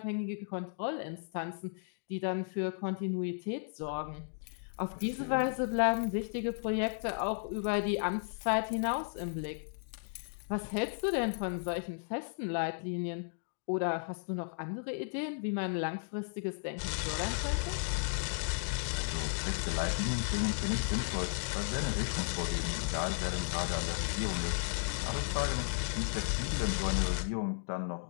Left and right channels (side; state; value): right; silent; digital silence